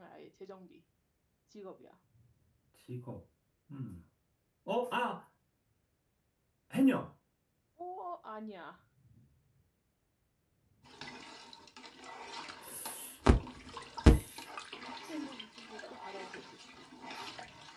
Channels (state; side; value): identical; both; correlation 1.00